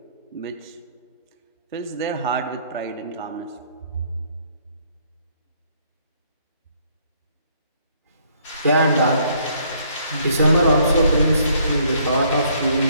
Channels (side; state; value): both; inverted; correlation -0.65